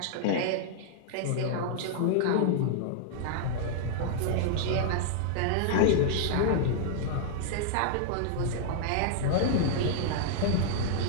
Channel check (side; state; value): both; different; correlation -0.01